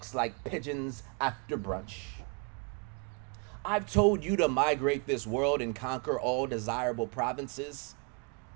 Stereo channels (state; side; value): quieter; left; 33.1 dB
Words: like pigeons after brunch. I've told you to migrate this world and conquer all desirable provinces.